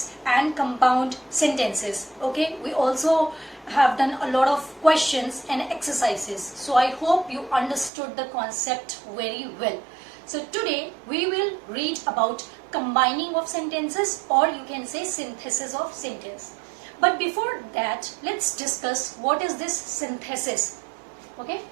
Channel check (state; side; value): drops out; left; at 7.9 s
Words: and compound sentences. Okay, we also have done a lot of questions and exercises. So I hope you understood the concept very well. So today we will read about combining of sentences, or you can say synthesis of sentence. But before that, let's discuss what is this synthesis. Okay,